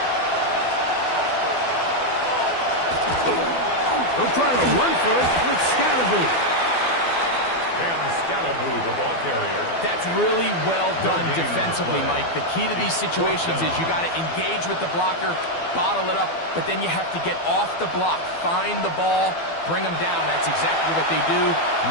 They'll try to run for it with Scatterboo. The ball carrier. That's really well done defensively, Mike. The key to these situations is you got to engage with the blocker, bottle it up, but then you have to get off the block, find the ball, bring them down. That's exactly what they do.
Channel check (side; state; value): right; late; 12 ms